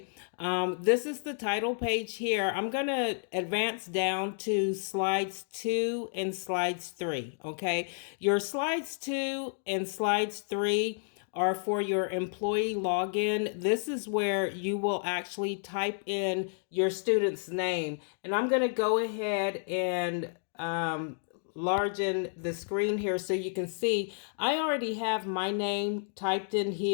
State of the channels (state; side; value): silent; right; digital silence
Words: This is the title page here. I'm going to advance down to slides 2 and slides 3. Okay. Your slides 2 and slides 3 are for your employee login. This is where you will actually type in your student's name. And I'm going to go ahead and largen the screen here so you can see I already have my name typed in